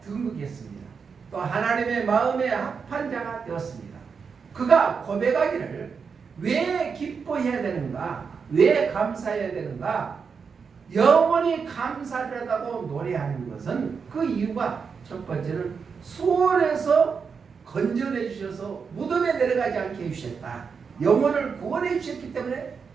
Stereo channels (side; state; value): left; quieter; 5.8 dB